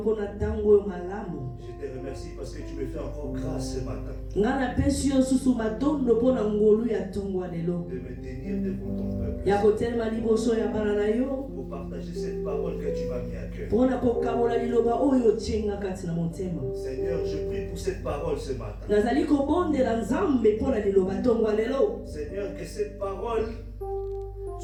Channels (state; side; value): identical; both; correlation 1.00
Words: Je te remercie parce que tu me fais encore grâce ce matin de me tenir devant ton peuple pour partager cette parole que tu m'as mis à cœur. Seigneur, je prie pour cette parole ce matin. Seigneur, que cette parole